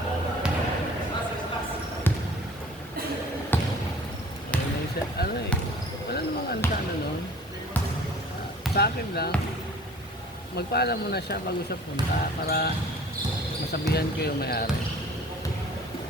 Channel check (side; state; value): both; normal; correlation 0.48